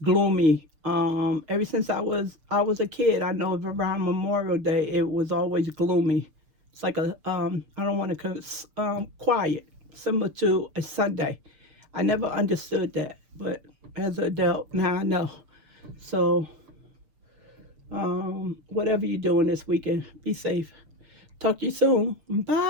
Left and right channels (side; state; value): left; late; 6.7 ms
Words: gloomy. Ever since I was a kid, I know around Memorial Day it was always gloomy. It's like a I don't want to quiet, similar to a Sunday. I never understood that, but as an adult now I know. So whatever you're doing this weekend, be safe. Talk to you soon.